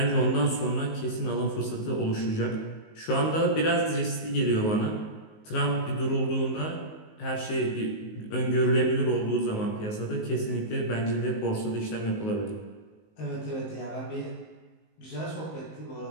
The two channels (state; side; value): late; right; 19 ms